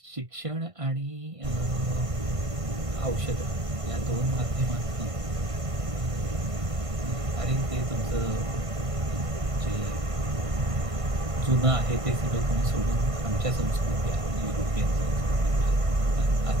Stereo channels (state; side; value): late; left; 1.5 ms